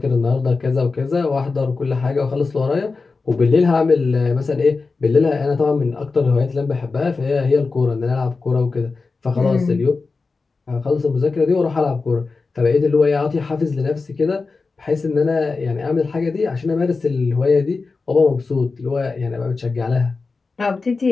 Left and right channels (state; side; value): quieter; right; 4.2 dB